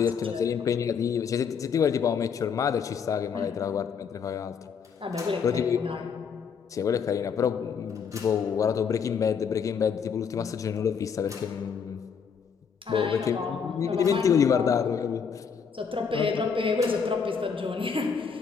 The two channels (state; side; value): quieter; right; 6.5 dB